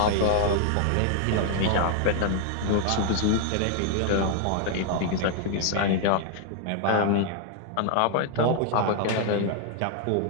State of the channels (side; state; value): both; different; correlation 0.00